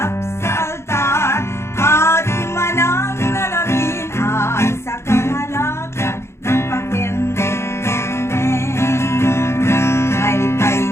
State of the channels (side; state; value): right; late; 0.13 ms